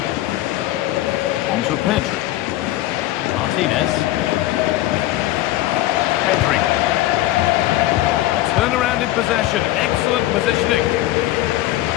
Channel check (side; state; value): right; quieter; 15.5 dB